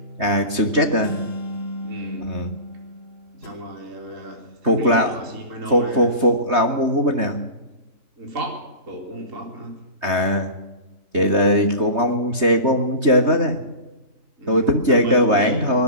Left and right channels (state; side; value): late; left; 3.2 ms